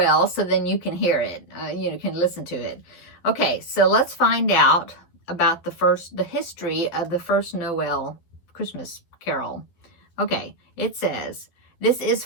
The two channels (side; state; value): right; late; 12 ms